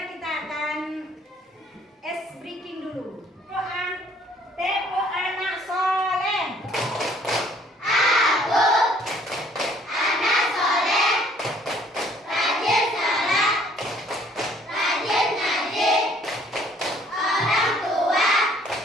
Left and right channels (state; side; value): normal; both; correlation 0.60